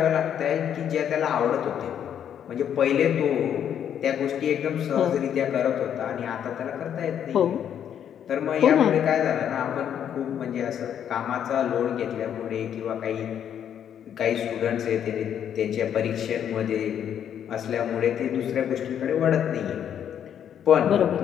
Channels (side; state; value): right; quieter; 9.2 dB